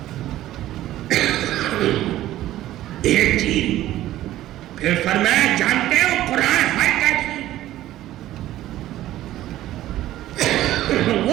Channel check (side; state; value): left; quieter; 14.2 dB